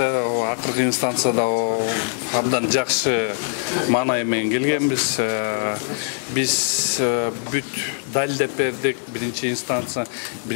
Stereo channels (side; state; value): right; silent; 64 dB below the other